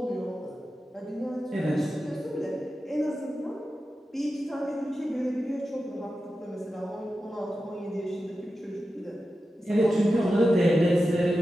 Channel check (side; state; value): both; normal; correlation 0.92